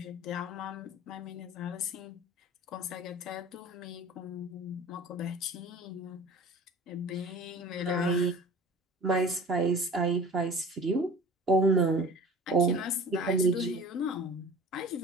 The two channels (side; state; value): both; normal; correlation 0.41